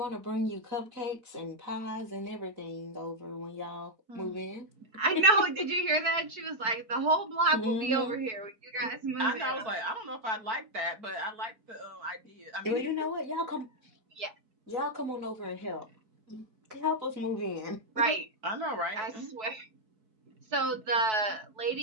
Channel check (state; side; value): late; left; 4.6 ms